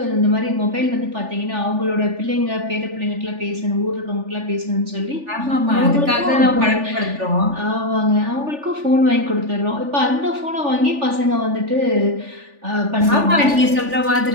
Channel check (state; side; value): late; left; 3.4 ms